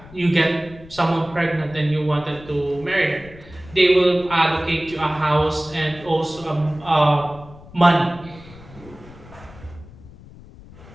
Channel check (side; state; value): left; noise; rumble, 20 dB below the sound